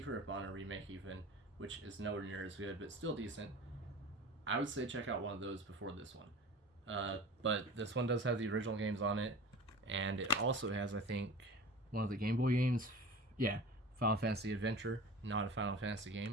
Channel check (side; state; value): both; normal; correlation 0.37